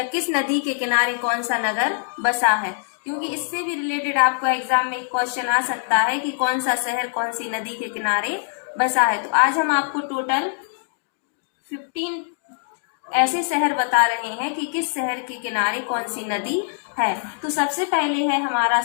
किस नदी के किनारे कौन सा नगर बसा है, क्योंकि इससे भी रिलेटेड आपको एग्जाम में एक क्वेश्चन आ सकता है कि कौन सा शहर कौन सी नदी के किनारे बसा है। तो आज हम आपको टोटल 15 ऐसे शहर बता रहे हैं कि किस शहर के किनारे कौन सी नदी है। तो सबसे पहले है हमारा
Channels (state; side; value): silent; right; digital silence